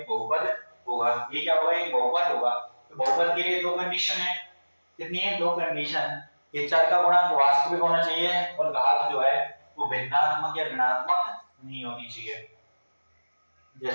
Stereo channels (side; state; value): both; inverted; correlation -1.00